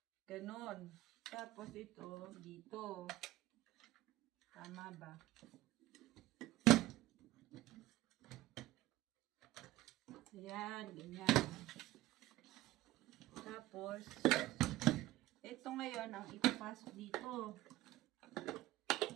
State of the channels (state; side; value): quieter; left; 16.5 dB